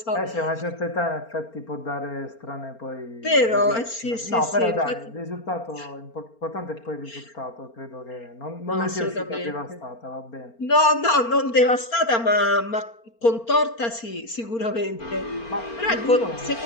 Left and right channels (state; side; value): late; right; 4.4 ms